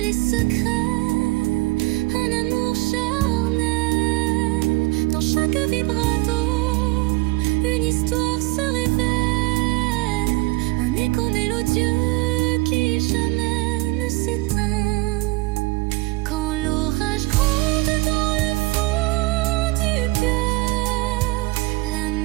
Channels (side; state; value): left; quieter; 21.4 dB